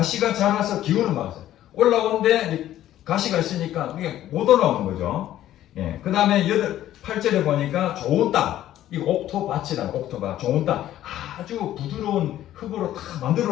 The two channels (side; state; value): right; quieter; 12.8 dB